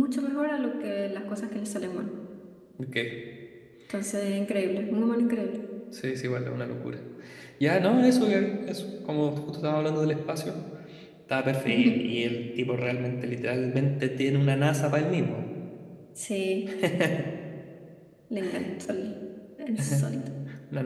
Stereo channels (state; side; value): identical; both; correlation 1.00